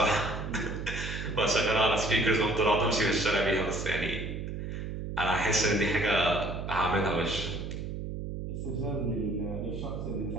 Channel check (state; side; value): noise; right; hum, 6 dB below the sound